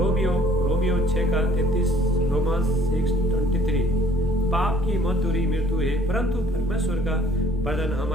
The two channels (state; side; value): normal; both; correlation 0.57